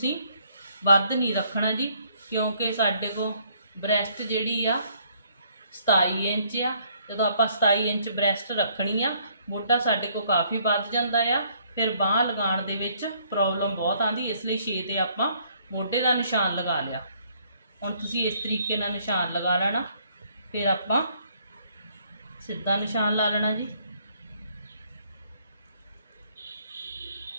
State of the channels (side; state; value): both; inverted; correlation -0.65